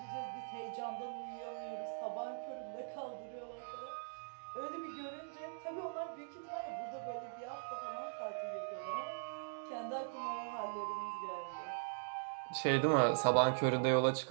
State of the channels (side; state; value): left; silent; digital silence